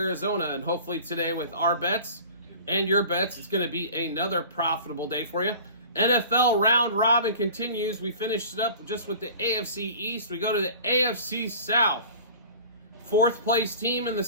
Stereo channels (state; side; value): inverted; both; correlation -0.42